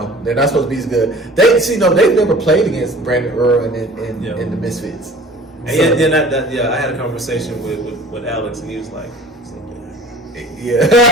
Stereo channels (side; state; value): both; normal; correlation 0.46